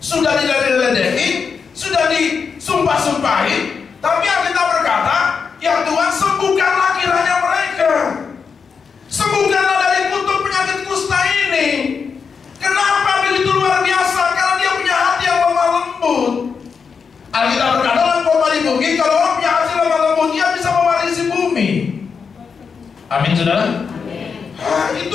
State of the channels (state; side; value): quieter; right; 5.8 dB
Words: sudah diledek-ledekin, sudah disumpah-sumpahin, tapi Alkitab berkata, ya Tuhan, sembuhkanlah kiranya mereka. Sembuhkanlah dari kutuk penyakit kusta ini. Kenapa begitu luar biasa? Karena dia punya hati yang lemah lembut. Alkitab berkata dalam khotbah di bukit, kalau orang punya hati lemah lembut, dia bisa mewarisi bumi. Amin, saudara? Amin.